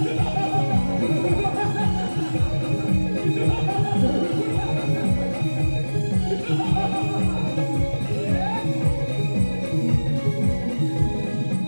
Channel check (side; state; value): both; inverted; correlation -1.00